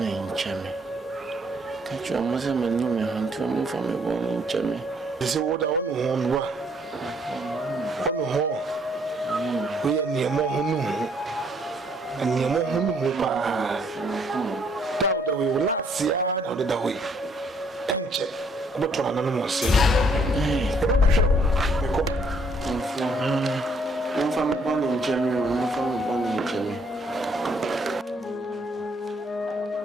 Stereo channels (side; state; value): both; normal; correlation 0.67